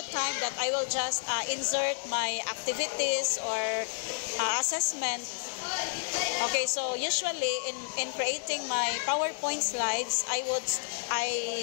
time that I will just insert my activities or assessment. Okay, so usually in creating my PowerPoint slides, I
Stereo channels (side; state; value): right; silent; 57 dB below the other